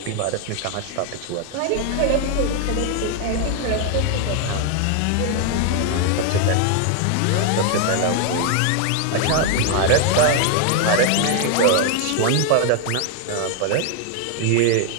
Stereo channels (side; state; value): both; different; correlation 0.00